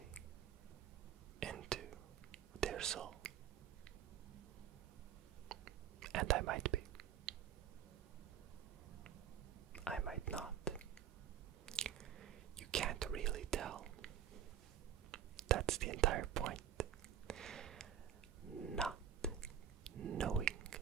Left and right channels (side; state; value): left; quieter; 9.5 dB